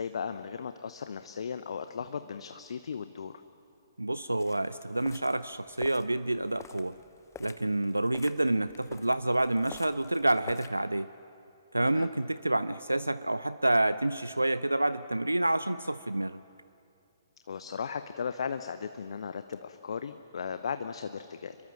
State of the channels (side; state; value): both; inverted; correlation -0.94